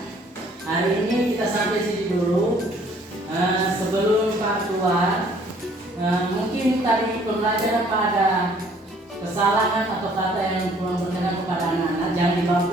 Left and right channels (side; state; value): both; normal; correlation 0.59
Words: hari ini kita sampai sini dulu. Sebelum Pak keluar, mungkin tadi pembelajaran Pak ada kesalahan atau kata yang kurang berkenan kepada anak-anak, jangan dibawa